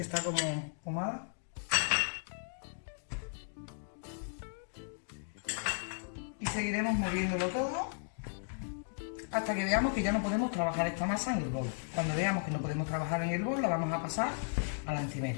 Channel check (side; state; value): right; silent; digital silence